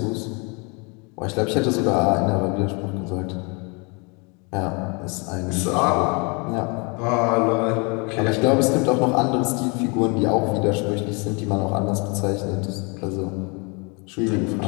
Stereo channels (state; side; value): quieter; right; 31.6 dB